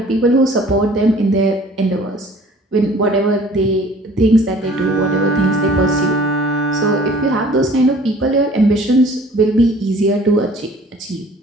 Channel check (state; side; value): normal; both; correlation 0.51